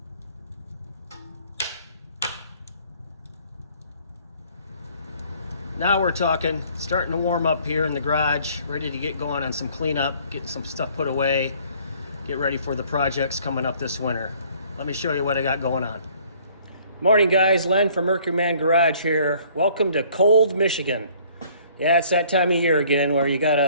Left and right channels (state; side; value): inverted; both; correlation -0.58